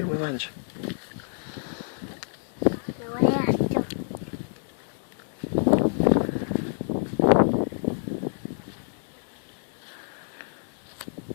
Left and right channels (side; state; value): right; silent; digital silence